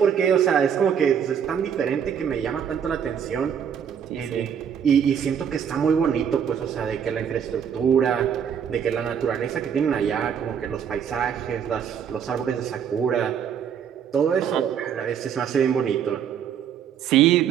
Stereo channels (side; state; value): left; quieter; 8.1 dB